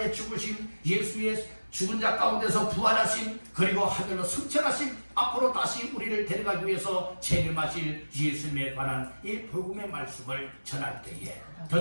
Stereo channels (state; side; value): inverted; both; correlation -1.00